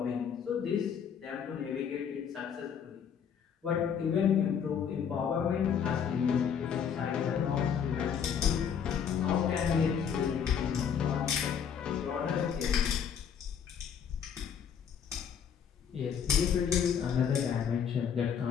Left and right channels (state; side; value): quieter; right; 7.6 dB